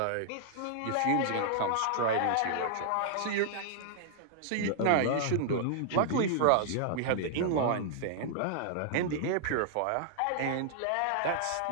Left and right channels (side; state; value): both; different; correlation -0.01